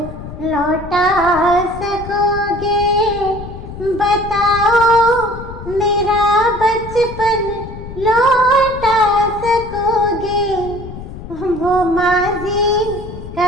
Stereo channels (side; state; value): left; noise; rumble, 12 dB below the sound